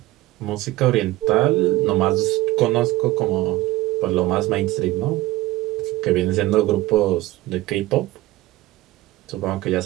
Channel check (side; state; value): left; quieter; 17.6 dB